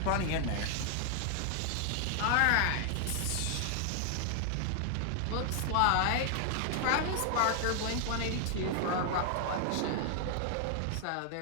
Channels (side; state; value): both; different; correlation 0.00